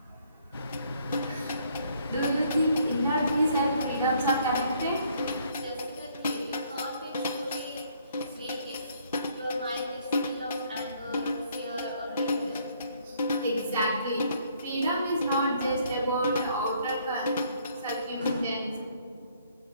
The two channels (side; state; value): both; inverted; correlation -0.65